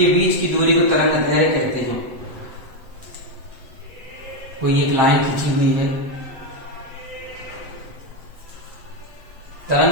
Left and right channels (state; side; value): late; left; 7.8 ms